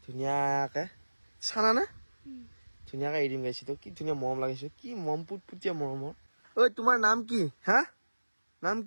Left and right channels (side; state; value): both; inverted; correlation -1.00